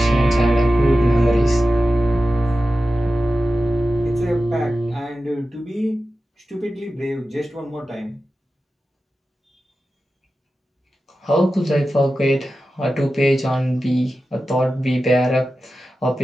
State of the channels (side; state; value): both; normal; correlation 0.93